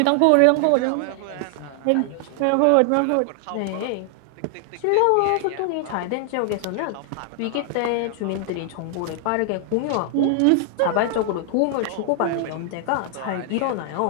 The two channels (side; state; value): both; different; correlation 0.00